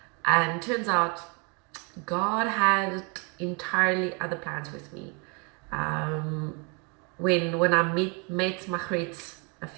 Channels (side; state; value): left; quieter; 33.9 dB